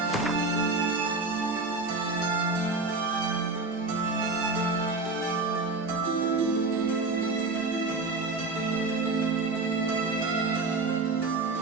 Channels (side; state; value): left; quieter; 3.6 dB